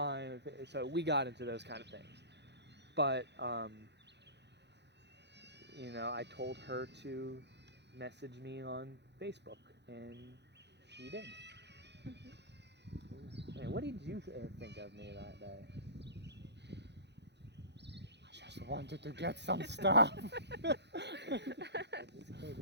So we got into those kind of things. But I told her to message me on Facebook, and she did. Man, what did you think of me that day? I just wanted to get some stuff. I just came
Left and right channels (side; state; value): left; late; 0.50 ms